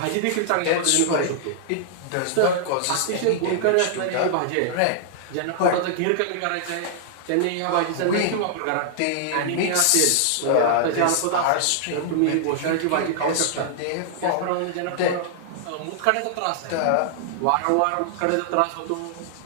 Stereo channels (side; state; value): both; different; correlation -0.01